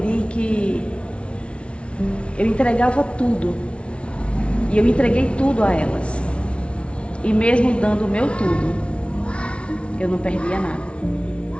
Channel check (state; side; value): late; right; 0.060 ms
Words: que eu entregava tudo e eu entreguei tudo a elas. E mesmo dando o meu tudo, eu não perdia nada.